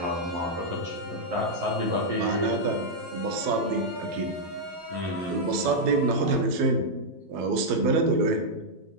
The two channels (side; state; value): left; late; 12 ms